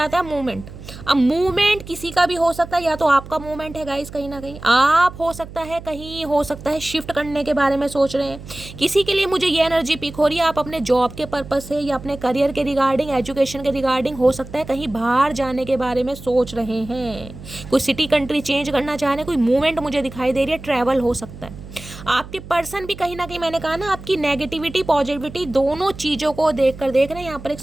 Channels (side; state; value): right; noise; hum, 15 dB below the sound